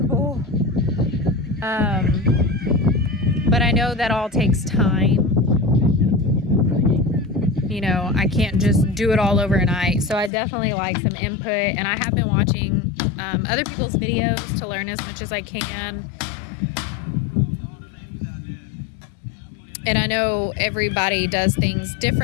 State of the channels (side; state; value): right; drops out; at 10.3 s